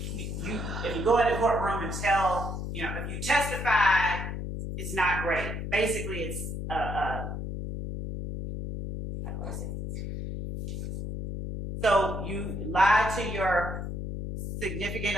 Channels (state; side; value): noise; left; hum, 5 dB below the sound